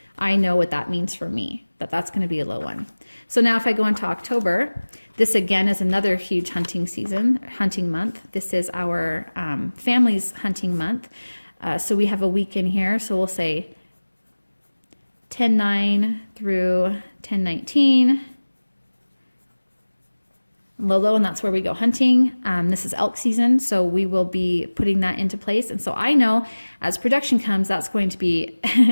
I know what that means for me, that's going to be a low one. So now if I go into October, this again is another huge hunting month. This is our family's hunting month. So we have a week in here. So we'll say 10/9 through 10/19. Lolo, and that's where we go hunting. This is elk season, so we will be putting that into place. And so I know as production comes, that's going to be,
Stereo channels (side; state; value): both; inverted; correlation -1.00